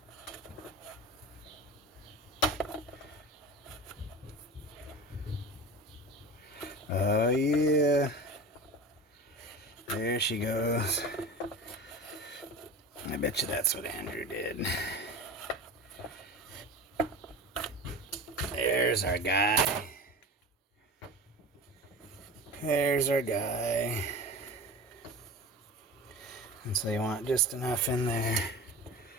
Oh yeah. There she goes. I bet you that's what Andrew did. There's our guy. There's our guy. And so you want just enough in there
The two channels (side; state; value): both; normal; correlation 0.32